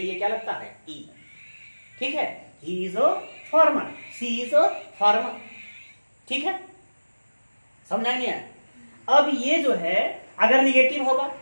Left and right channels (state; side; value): inverted; both; correlation -1.00